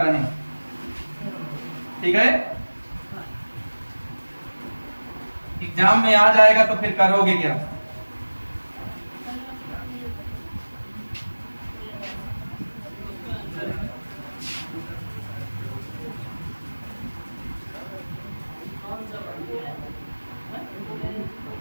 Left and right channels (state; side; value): inverted; both; correlation -1.00